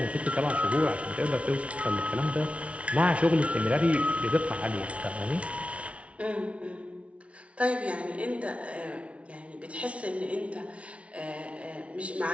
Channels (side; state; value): left; late; 0.063 ms